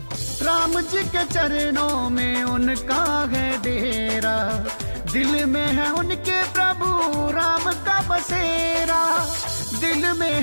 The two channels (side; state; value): both; inverted; correlation -1.00